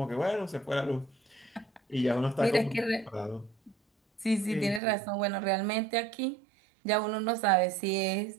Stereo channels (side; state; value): left; drops out; at 4.8 s